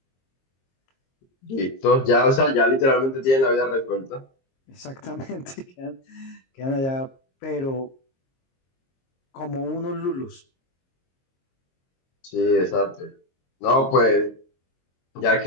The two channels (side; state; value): right; late; 22 ms